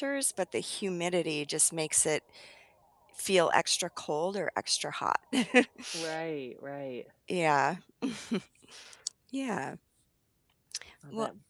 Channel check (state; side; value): identical; both; correlation 1.00